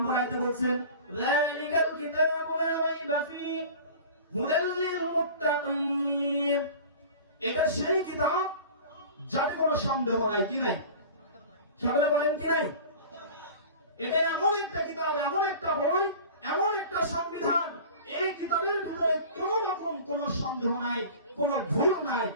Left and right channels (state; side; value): inverted; both; correlation -0.39